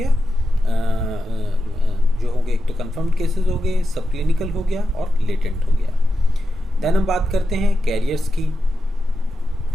जो हो गए, एक तो कंफर्म्ड केसेस हो गए, सब क्लिनिकल हो गया और लेटेंट हो गया। देन हम बात करते हैं कैरियर्स की।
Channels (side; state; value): both; normal; correlation 0.89